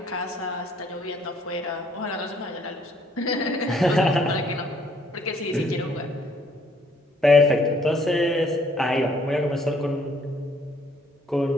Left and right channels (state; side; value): normal; both; correlation 0.64